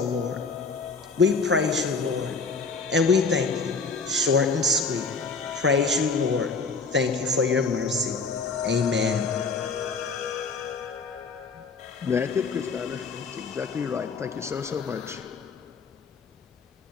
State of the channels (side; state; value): right; quieter; 4.4 dB